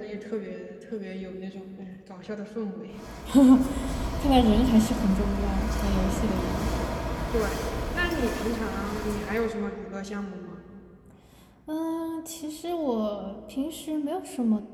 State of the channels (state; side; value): identical; both; correlation 1.00